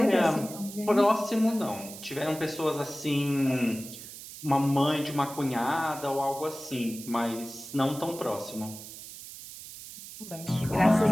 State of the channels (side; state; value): right; noise; hiss, 13 dB below the sound